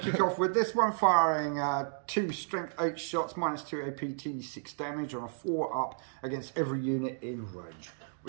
kick off with this one, firing 2 strength 8 shots, -2 APT, 6 damage on a 4 up against every unit in range.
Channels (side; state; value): left; silent; digital silence